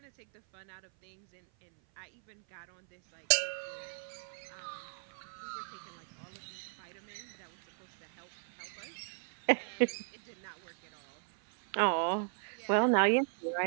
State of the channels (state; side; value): silent; left; 53 dB below the other